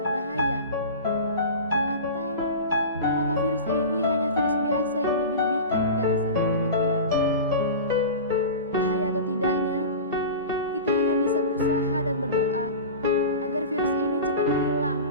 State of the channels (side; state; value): both; inverted; correlation -0.31